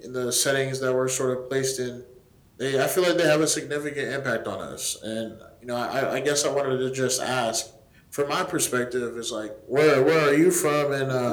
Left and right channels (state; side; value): identical; both; correlation 1.00